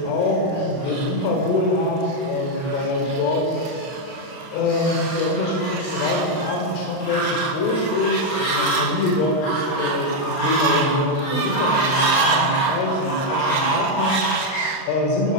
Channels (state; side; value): late; right; 39 ms